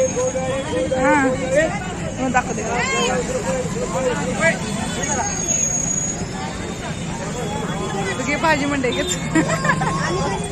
हां दाखवते. भाजी मंडई घेत.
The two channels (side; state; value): both; identical; correlation 1.00